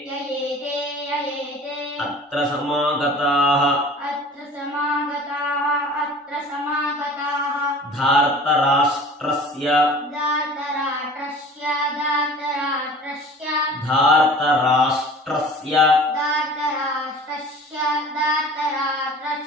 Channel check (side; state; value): both; normal; correlation 0.44